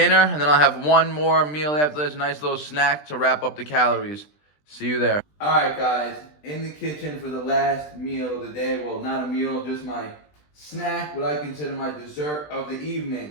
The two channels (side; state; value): right; late; 20 ms